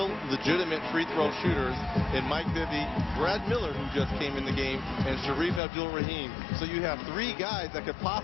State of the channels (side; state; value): right; drops out; at 5.6 s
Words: legitimate free throw shooters in Mike Bibby, Brad Miller, who just came in the game, and Sharif Abdul-Rahim. So you have 3 guys that could